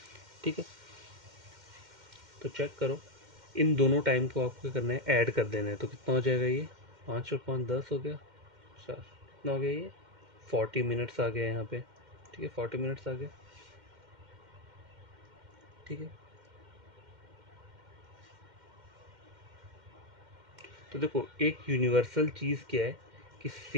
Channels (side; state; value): left; late; 2.1 ms